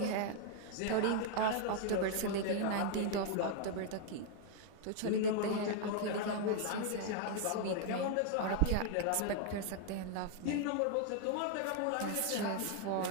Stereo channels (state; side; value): different; both; correlation 0.00